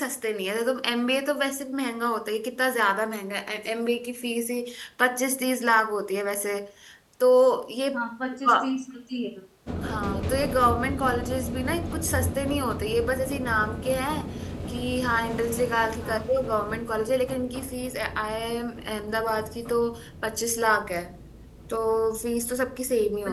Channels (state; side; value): identical; both; correlation 1.00